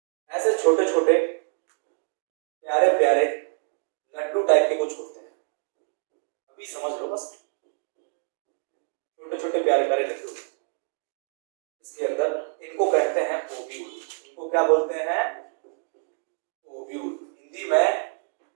ऐसे छोटे छोटे प्यारे प्यारे लड्डू टाइप के कुछ होते हैं, अभी समझ लो बस, छोटे छोटे प्यारे प्यारे लड्डू। इसके अंदर इनको कहते हैं ओव्यूल। उसको क्या बोलते हैं, ओव्यूल। हिंदी में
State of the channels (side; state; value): left; silent; digital silence